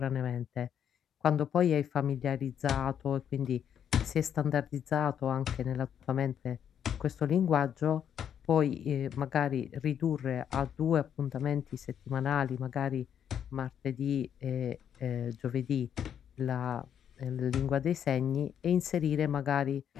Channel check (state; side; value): quieter; right; 8.9 dB